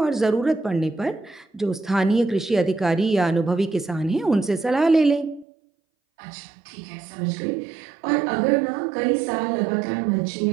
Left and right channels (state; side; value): drops out; left; at 5.5 s